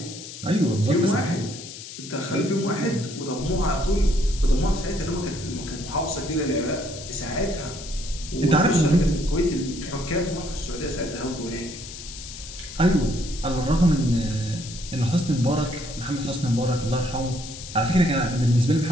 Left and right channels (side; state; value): left; noise; hiss, 12 dB below the sound